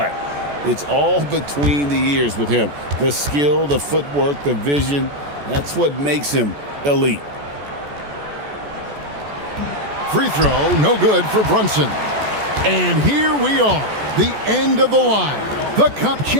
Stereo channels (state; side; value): late; left; 14 ms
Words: it's all between the ears with him. The skill, the footwork, the vision, that's what makes him elite. Free throw, no good for Brunson. And here we are, the end of the line, the Cup